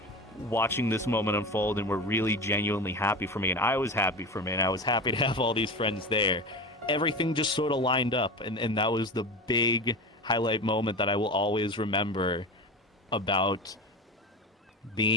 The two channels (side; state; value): both; normal; correlation 0.27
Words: watching this moment unfold, and were really genuinely happy for me, and I was happy for me, and I was happy to have all these friends there. Everything just sort of lined up, and that was the big highlight moment that I will always remember about